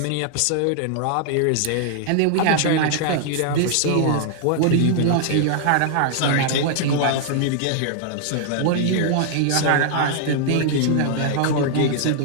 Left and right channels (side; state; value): both; different; correlation -0.01